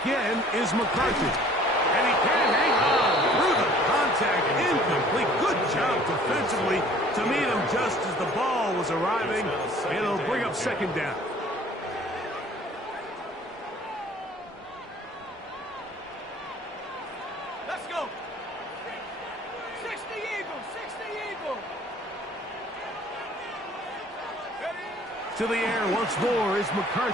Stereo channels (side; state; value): both; normal; correlation 0.52